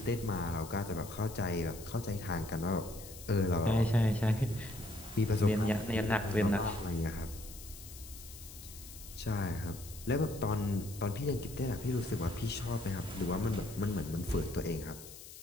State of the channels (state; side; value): noise; left; hiss, 15 dB below the sound